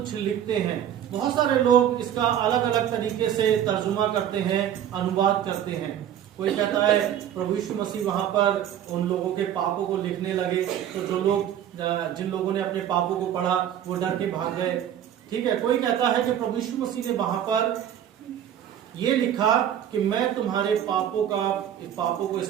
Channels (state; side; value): quieter; left; 10.3 dB